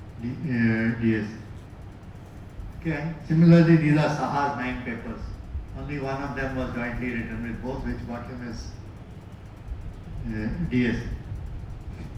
DS. Okay, similarly, these are Saha's 9 papers. Only one of them was jointly written with both, which got him his DS.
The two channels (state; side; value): identical; both; correlation 1.00